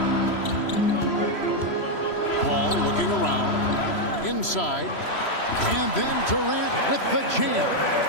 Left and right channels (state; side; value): late; right; 3.0 ms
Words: Paul looking around. Inside. And then Durant with the jam.